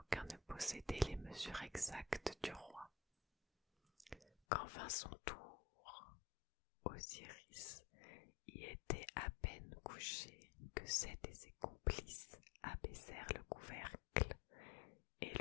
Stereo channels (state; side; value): drops out; right; at 4.3 s